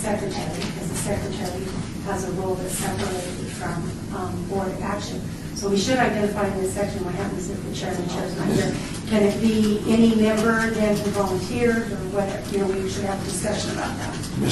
because the secretary has a role that's separated from board action. So we should identify in this section what happens if the chair and the chair is not here. Can it be any member then who volunteered, or whatever? You know, we should have a discussion about that.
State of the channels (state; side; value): identical; both; correlation 1.00